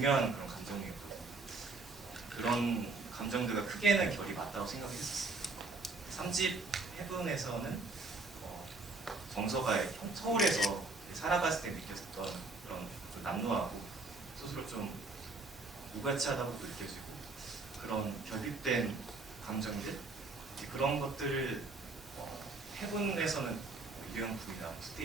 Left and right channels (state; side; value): quieter; left; 3.6 dB